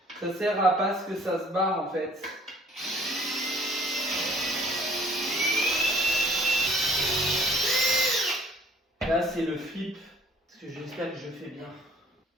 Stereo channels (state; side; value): normal; both; correlation 0.56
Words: Ça sert à pas ce que ça se barre en fait. Là c'est le flip. Parce que j'espère que je fais bien.